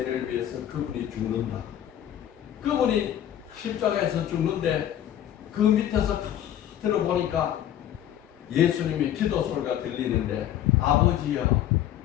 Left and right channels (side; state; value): right; quieter; 11.3 dB